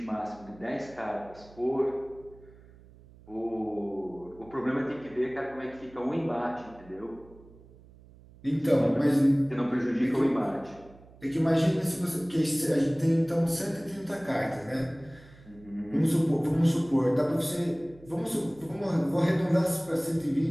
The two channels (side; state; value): right; noise; hum, 23 dB below the sound